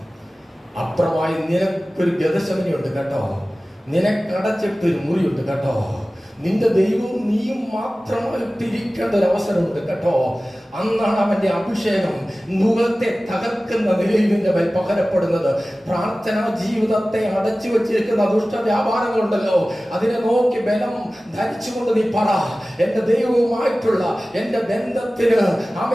അപ്പുറമായി നിനക്കൊരു ഗതശമനിയുണ്ട് കേട്ടോ, നിനക്കടച്ചിട്ടൊരു മുറിയുണ്ട് കേട്ടോ, നിന്റെ ദൈവവും നീയും മാത്രമായിട്ടിരിക്കേണ്ട ഒരു അവസരമുണ്ട് കേട്ടോ. അന്നാണ് അവന്റെ അഭിഷേകം മുഖത്തെ തകർക്കുന്ന നിലയിൽ നിന്റെ മേൽ പകരപ്പെടുന്നത്. പ്രാർത്ഥനാ ജീവിതത്തെ അടച്ചു വെച്ചിരിക്കുന്ന ദുഷ്ട വ്യാപാരങ്ങളുണ്ടല്ലോ, അതിനെ നോക്കി ബലം ധരിച്ചുകൊണ്ട് നീ പറ, എന്റെ ദൈവവുമായിട്ടുള്ള എന്റെ ബന്ധത്തിന്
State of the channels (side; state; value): both; normal; correlation 0.97